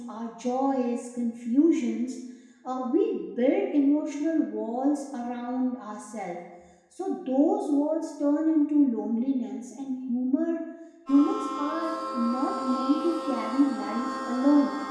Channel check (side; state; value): both; identical; correlation 1.00